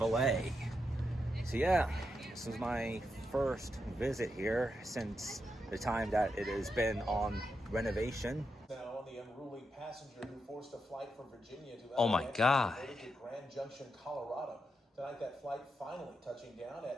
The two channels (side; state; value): both; normal; correlation 0.85